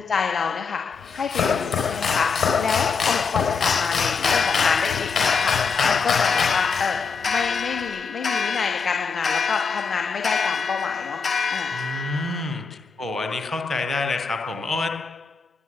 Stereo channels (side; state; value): right; quieter; 5.2 dB